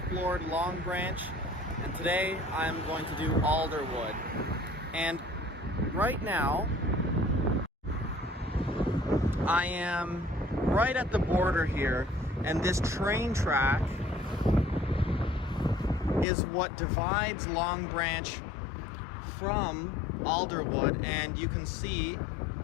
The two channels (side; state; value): right; drops out; at 16.2 s